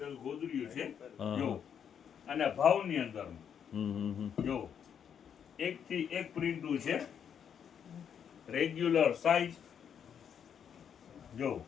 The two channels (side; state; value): right; quieter; 8.1 dB